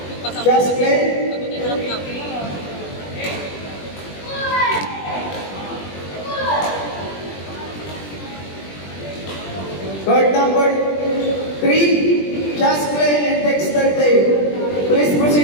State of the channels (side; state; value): right; late; 21 ms